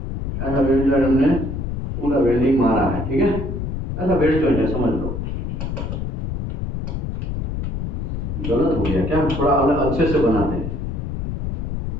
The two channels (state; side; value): noise; left; rumble, 3 dB below the sound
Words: ऐसा वेल्ड जॉइंट हमने पूरा वेल्डिंग मारा है, ठीक है? ऐसा वेल्ड जॉइंट है, समझ लो। गलत हो गया क्या? थोड़ा अलग अच्छे से बनाते हैं।